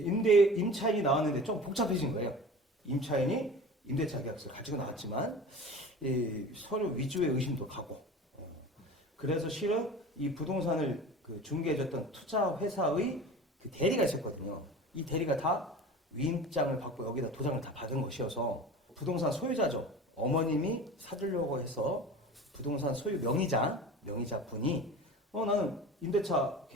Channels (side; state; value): both; normal; correlation 0.37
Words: 나왔는데 좀 복잡해진 거예요. 임차인이 임대차 계약서를 가지고 나왔지만 서류 위조의 의심도 가고 그래서 실은 이 부동산을 중개해줬던 투자 회사의 그 대리가 있었거든요. 이 대리가 다 위임장을 받고 여기다 도장을 다 받은 것이어서 부동산 소유자죠. 어머님이 사주려고 해서 부동산 소유 명의자분이 나는 임대차